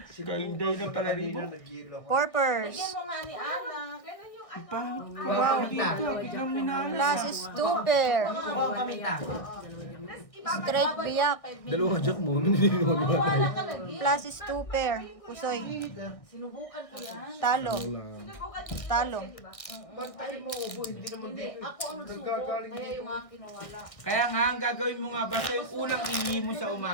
Kay Inday na palaribok. Nag-yelo ako. Porpers. Lagyan mo nga ni Ana. Ganun yung ano. Wow. Dito, biglang minalas. Plus is 2 pair. Kuha kami ta. Tapos ibabalik. Straight biyak. Dalawang jack mo, naniniwala ba tayo? Ka lagi. Plus is 2 pair. Pusoy. Sinubukan ko yan. Talo. Sinubukan niyo Talo. siya, diba? Ba't tayo mo ubo? Hindi naman Hindi, dito. ako ang nagsubo. Nagkagaling Kaya dito. yung akin nawala. Kaya nga, ang gagawin mo nga, basta yung unang ihi mo sa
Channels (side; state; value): right; late; 1.6 ms